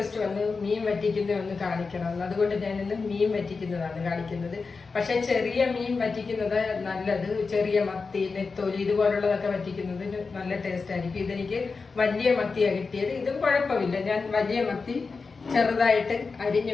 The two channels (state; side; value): quieter; right; 4.5 dB